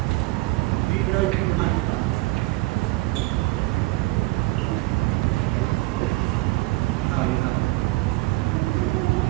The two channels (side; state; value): left; quieter; 21.3 dB